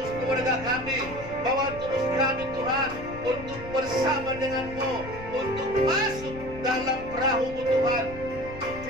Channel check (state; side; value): noise; left; rumble, 14 dB below the sound